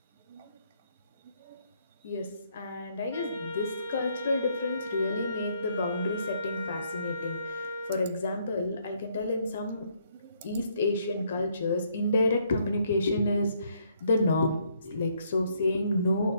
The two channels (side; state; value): both; inverted; correlation -0.70